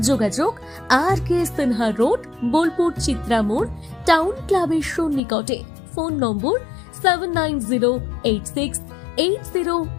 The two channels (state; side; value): drops out; right; at 5.2 s